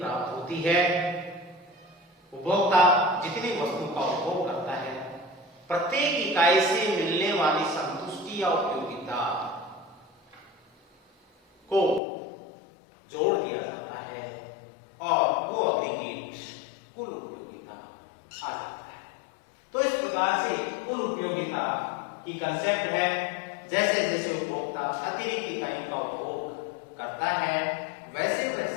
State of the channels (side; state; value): right; drops out; at 12.0 s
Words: होती है। उपभोक्ता जितनी वस्तु का उपभोग करता है, प्रत्येक इकाई से मिलने वाली संतुष्टि या उपयोगिता को जोड़ दिया जाता है और वो एग्रीगेट कुल उपयोगिता आ जाता है। तो इस प्रकार से कुल उपयोगिता की कंसेप्ट है, जैसे जैसे उपभोक्ता अतिरिक्त इकाइयों का उपभोग करता है वैसे